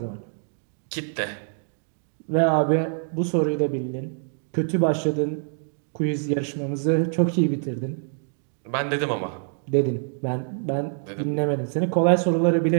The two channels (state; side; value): silent; left; digital silence